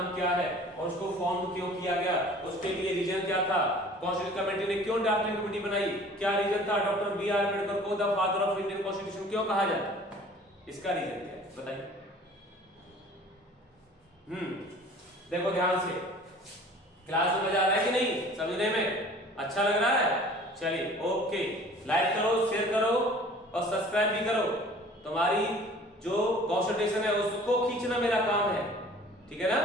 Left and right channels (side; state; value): both; normal; correlation 0.48